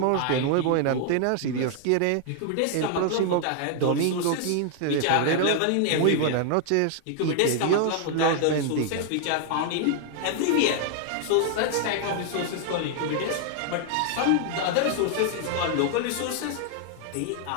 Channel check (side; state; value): both; different; correlation 0.00